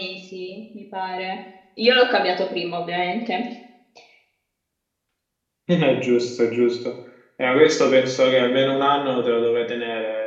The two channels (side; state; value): both; identical; correlation 1.00